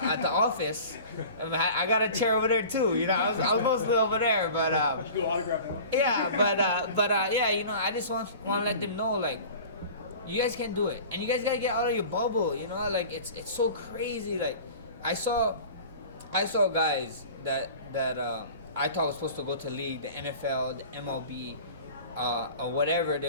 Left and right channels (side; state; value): both; inverted; correlation -0.40